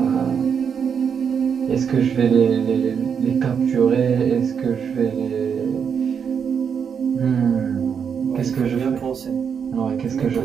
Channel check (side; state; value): left; quieter; 7.0 dB